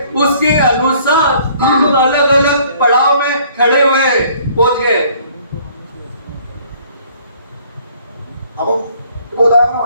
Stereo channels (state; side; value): inverted; both; correlation -0.58